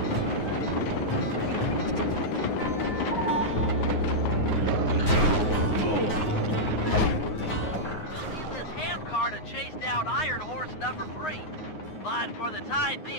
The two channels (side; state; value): right; late; 9.6 ms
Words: chase down Iron Horse number 3. But for the time